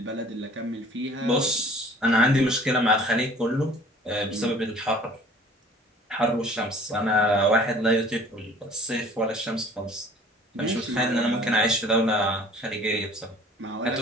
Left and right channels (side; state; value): both; normal; correlation 0.50